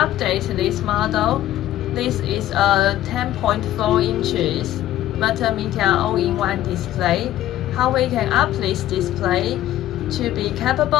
this model. This is a 10.4 inches multimedia all-in-one display. How we can up this display to be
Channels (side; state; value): right; quieter; 13.6 dB